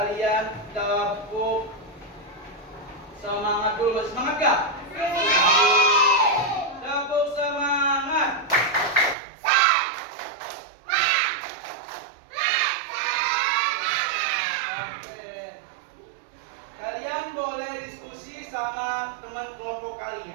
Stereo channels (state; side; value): drops out; left; at 9.2 s